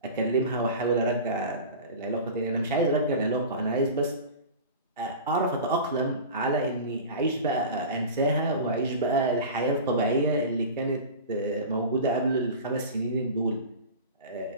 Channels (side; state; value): both; inverted; correlation -0.33